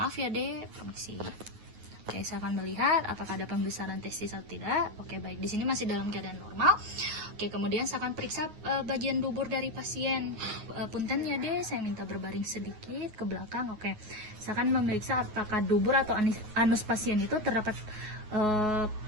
ya, Dek, permisi. Oke, saya akan melihat apakah ada pembesaran testis atau tidak. Oke, baik. Di sini masih dalam keadaan normal. Oke, kemudian saya akan periksa bagian dubur dari pasien. Punten ya deh, saya minta berbaring sedikit ke belakang. Oke, saya akan memeriksa apakah dubur atau anus pasien itu terdapat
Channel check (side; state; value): left; late; 9.4 ms